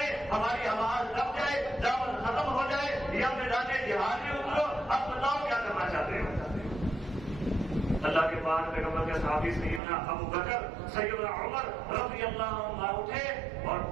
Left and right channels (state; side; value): drops out; left; at 9.8 s